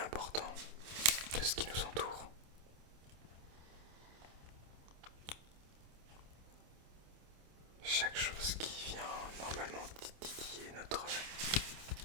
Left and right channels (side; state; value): left; late; 27 ms